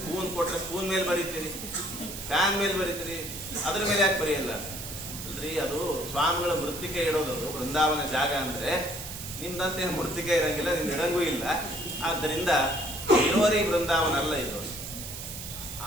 ಕೊಟ್ರೆ ಸ್ಪೂನ್ ಮೇಲೆ ಬರೀತೀರಿ, ಫ್ಯಾನ್ ಮೇಲೆ ಬರೀತೀರಿ, ಅದ್ರ ಮೇಲೆ ಯಾಕೆ ಬರೆಯಲ್ಲ ಅಲ್ರಿ? ಅದು ಸ್ವಾಮಿಗಳ ಮೃತ್ತಿಕೆ ಇಡೋದು ಬೃಂದಾವನ ಜಾಗ ಅಂದ್ರೆ. ನಿಮ್ದಂತೆ ಮೃತ್ತಿಕೆ ಇರಂಗಿಲ್ಲ, ನಿಮ್ಗೆ ಇಡಂಗೂ ಇಲ್ಲ. ಆದ್ದರಿಂದ ಇಳುವರಿ ಬೃಂದಾವನ ಅಲ್ಲ ಇದು.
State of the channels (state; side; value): noise; right; hiss, 9 dB below the sound